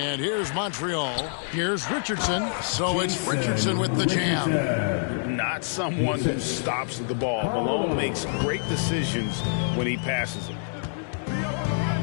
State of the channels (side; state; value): right; silent; digital silence